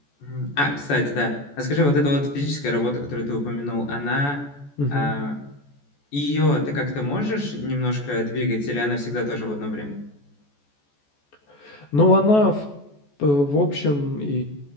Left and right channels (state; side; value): late; right; 14 ms